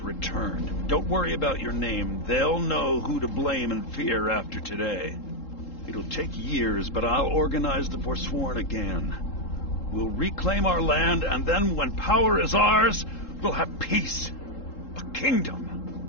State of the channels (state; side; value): late; right; 3.8 ms